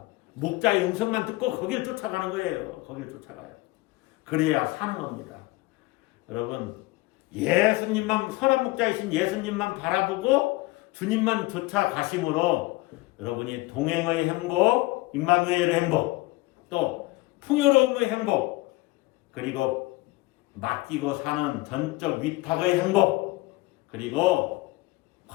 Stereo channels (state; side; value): quieter; right; 21.0 dB